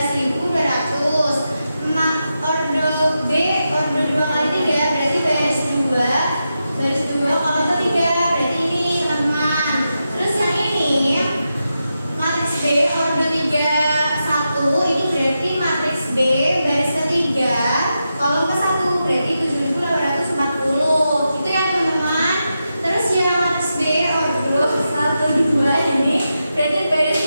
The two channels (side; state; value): both; inverted; correlation -0.88